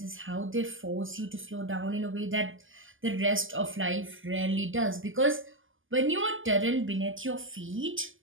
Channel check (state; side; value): late; left; 0.58 ms